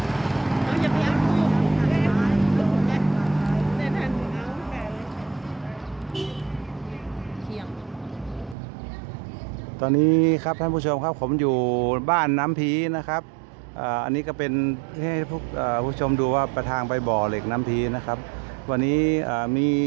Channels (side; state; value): left; drops out; at 8.6 s